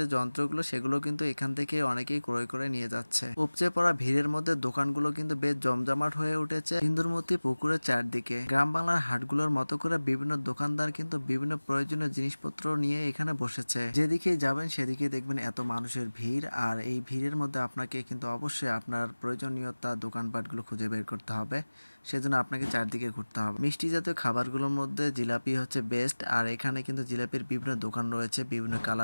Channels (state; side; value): inverted; both; correlation -1.00